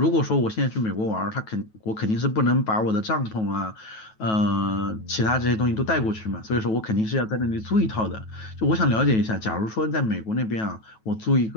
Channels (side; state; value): right; late; 9.2 ms